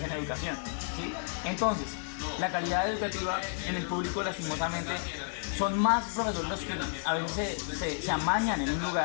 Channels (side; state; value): right; silent; digital silence